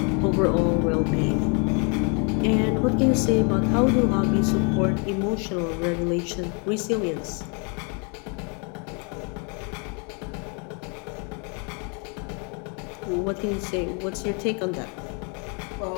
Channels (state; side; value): quieter; right; 35.5 dB